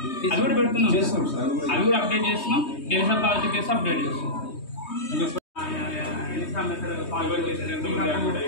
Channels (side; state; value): right; late; 3.2 ms